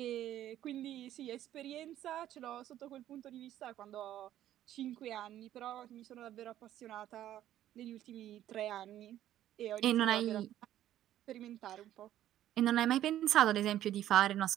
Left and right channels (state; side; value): quieter; left; 12.4 dB